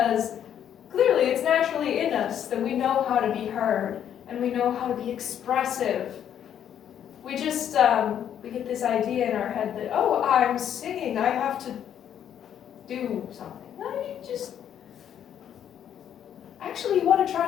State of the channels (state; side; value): quieter; right; 9.6 dB